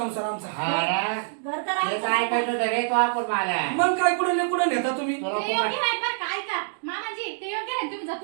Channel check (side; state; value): left; silent; digital silence